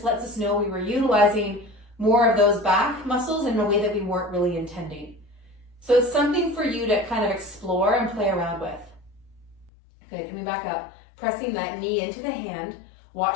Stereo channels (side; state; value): right; drops out; at 9.7 s